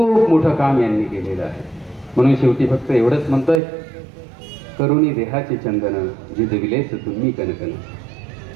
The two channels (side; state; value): left; drops out; at 3.6 s